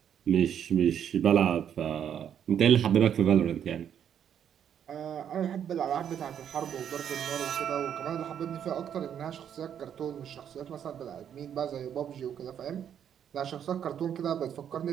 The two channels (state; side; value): quieter; left; 9.0 dB